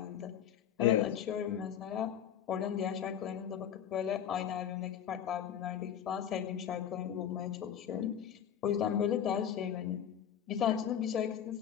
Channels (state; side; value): quieter; right; 9.3 dB